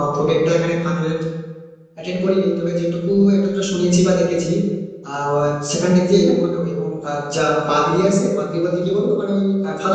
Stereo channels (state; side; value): identical; both; correlation 1.00